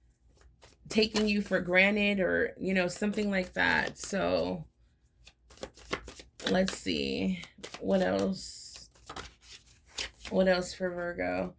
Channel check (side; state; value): both; identical; correlation 1.00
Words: taking you for granted, or, something like that. So let's see what else. What else for Virgo?